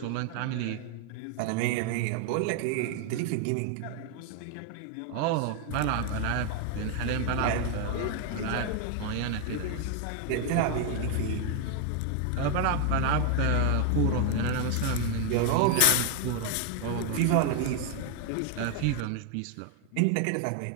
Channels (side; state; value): both; different; correlation 0.00